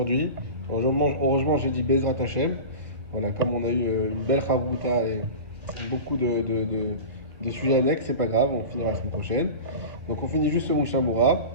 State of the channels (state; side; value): late; left; 1.7 ms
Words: Heureusement, j'ai dit Bezrat Hashem. Voilà, comme on a eu une belle Chavruta et beaucoup de sujets annexes, c'est pas grave, on finira la semaine prochaine. Donc on finit juste ce Mishabura.